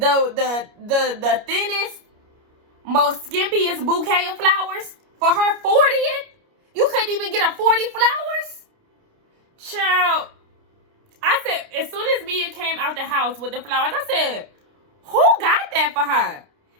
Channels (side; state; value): left; late; 29 ms